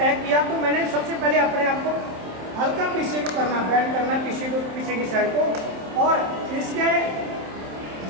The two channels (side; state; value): left; late; 27 ms